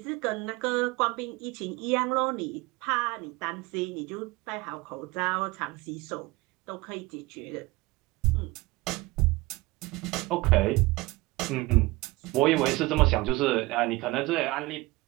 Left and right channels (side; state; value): left; quieter; 21.7 dB